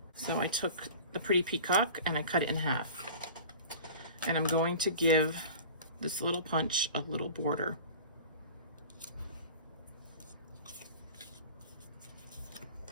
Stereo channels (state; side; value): inverted; both; correlation -0.39